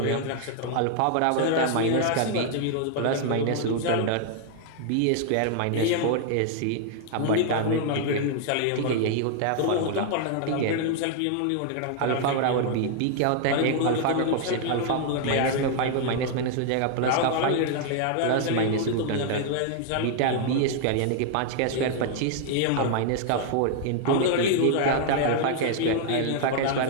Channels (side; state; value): both; different; correlation 0.00